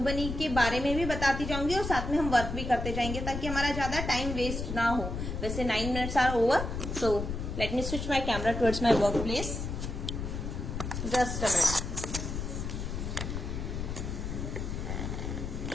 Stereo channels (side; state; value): left; noise; rumble, 4 dB below the sound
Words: के बारे में भी बताती जाऊंगी, और साथ में हम वर्क भी करते जाएंगे, ताकि हमारा ज्यादा टाइम वेस्ट ना हो. वैसे 9 minutes are over. So let me switch my camera towards my workplace. Just a minute.